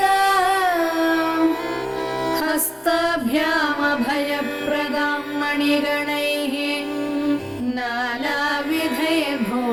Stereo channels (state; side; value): identical; both; correlation 1.00